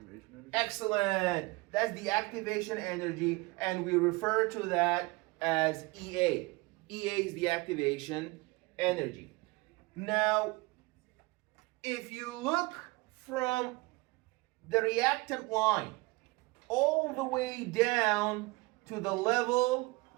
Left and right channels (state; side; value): quieter; left; 23.8 dB